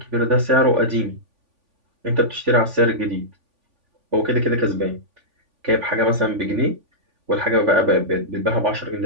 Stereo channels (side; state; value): left; late; 3.5 ms